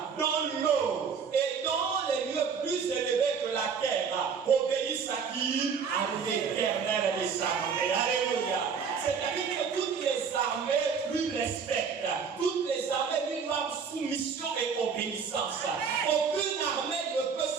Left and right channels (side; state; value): left; quieter; 6.2 dB